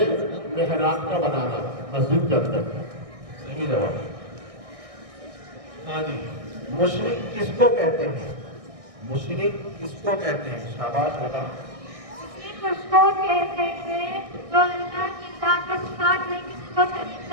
محراب کا بنانا مسجد کے اندر. صحیح جواب. ہاں جی. مشرک کس کو کہتے ہیں؟ مشرک کس کو کہتے ہیں؟ شاباش. بتا. مشرک اس کو کہتے ہیں جو اللہ کی ذات کے ساتھ میں کسی کو شریک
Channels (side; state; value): left; late; 1.6 ms